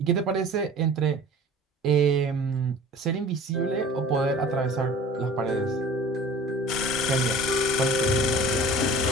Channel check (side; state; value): both; normal; correlation 0.43